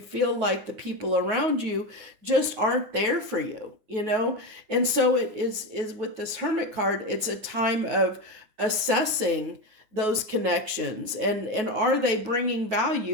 like the people around you just aren't there for you, and so it is with this Hermit card, it's a time of assessing those connections and are they bringing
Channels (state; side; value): late; left; 9.3 ms